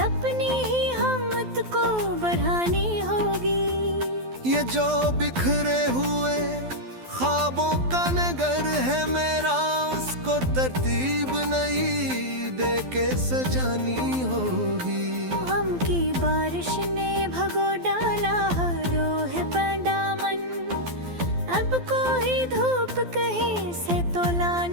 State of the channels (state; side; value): late; left; 12 ms